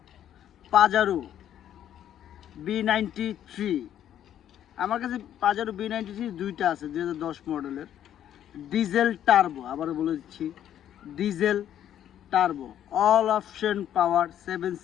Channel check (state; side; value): quieter; right; 10.7 dB